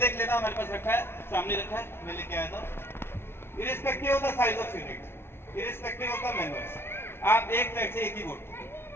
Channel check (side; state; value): right; late; 0.12 ms